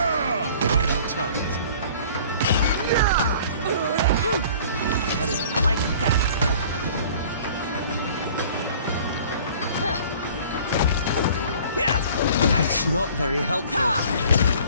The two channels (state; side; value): inverted; both; correlation -0.49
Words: Right on target. How do you like that? That's not very helpful.